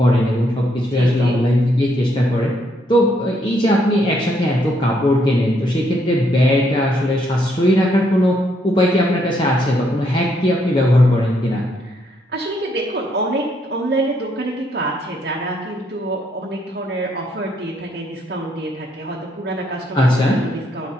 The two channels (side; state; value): both; normal; correlation 0.73